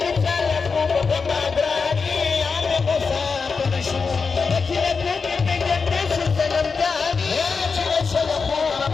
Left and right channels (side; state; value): right; quieter; 5.0 dB